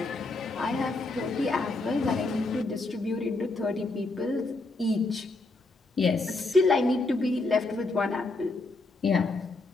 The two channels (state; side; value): quieter; right; 3.2 dB